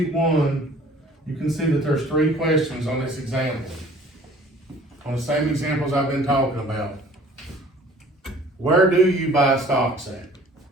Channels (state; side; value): normal; both; correlation 0.51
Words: 1, you can see that there's 3 questions on this example. On the same examples I've been talking about. Where do you buy stocks at?